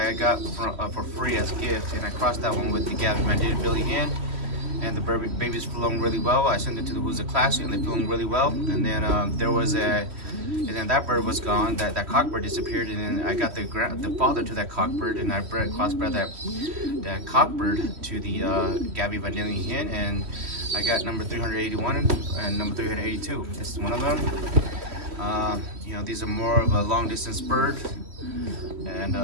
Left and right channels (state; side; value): late; left; 3.1 ms